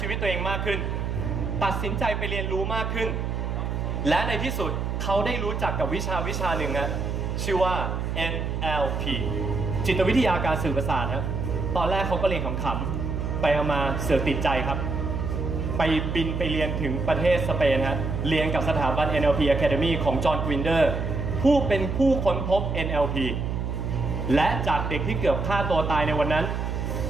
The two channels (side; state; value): right; noise; hum, 2 dB below the sound